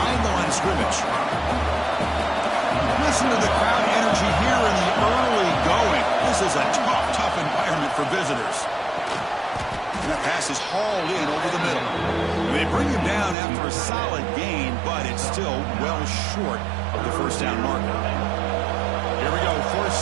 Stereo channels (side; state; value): left; drops out; at 13.4 s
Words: the line of scrimmage. Listen to the crowd energy here in the early going. This is a tough environment for visitors. And that pass is hauled in over the middle. They bring him down after a solid gain, but it's still well short of the first down marker. Here we go.